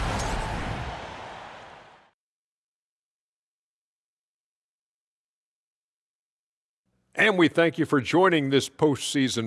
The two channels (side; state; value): both; identical; correlation 1.00